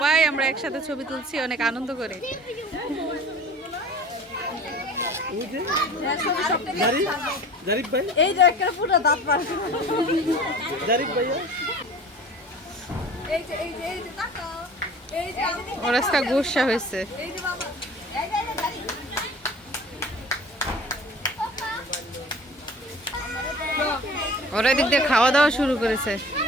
আমরা একসাথে ছবি তুলছি অনেক আনন্দ করে। এই যে একটা পুরো দাঁত পারছে। এই যে এই যে এই যে তাকাও। এই যে ওর আজকে গুসা হয়েছে। এই যে বাবা। এই যে দাঁড়ি। ওরা এদিক দিয়ে খাওয়া দাওয়া শুরু করেছে।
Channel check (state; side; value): normal; both; correlation 0.43